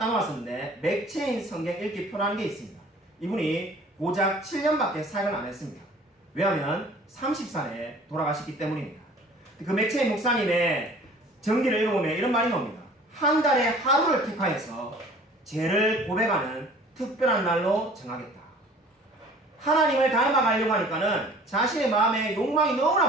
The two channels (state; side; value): normal; both; correlation 0.49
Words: 놓았었는데 맥체인 성경 읽기 표라는 게 있습니다. 이분이 고작 7년밖에 사역을 안 했습니다. 왜냐하면 30살에 돌아가셨기 때문입니다. 그 맥체인 목사님의 전기를 읽어보면 이런 말이 나옵니다. 한 달에 하루를 택하여서 죄를 고백하는 특별한 날로 정하겠다. 하나님을 닮아가려고 하니까는 자신의 마음에 욕망이